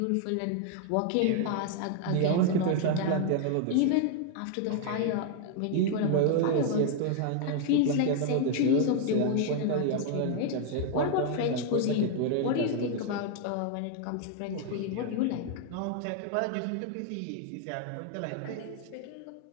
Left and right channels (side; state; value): both; different; correlation 0.00